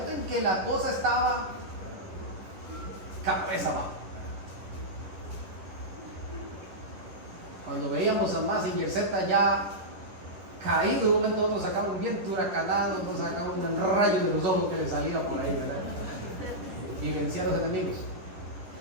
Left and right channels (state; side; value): late; left; 10 ms